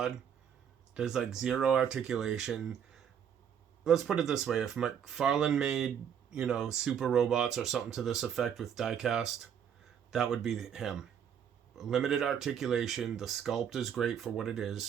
There's like zero articulation. Let's put it this way. If McFarlane made, super robots or something to this effect with diecast, that would be him. Limited articulation. The sculpt is great for what it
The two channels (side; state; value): left; quieter; 8.4 dB